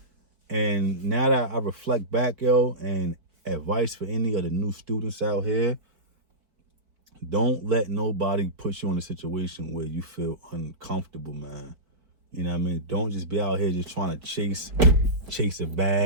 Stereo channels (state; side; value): late; left; 4.5 ms